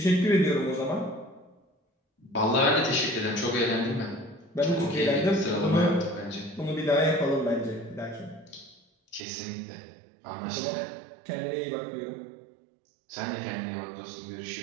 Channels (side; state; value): left; drops out; at 9.2 s